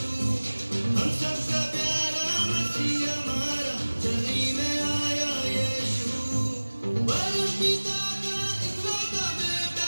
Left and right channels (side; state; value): both; inverted; correlation -1.00